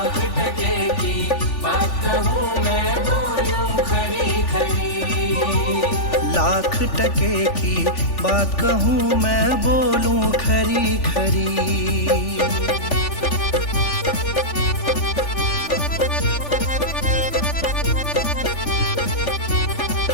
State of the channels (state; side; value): late; right; 3.4 ms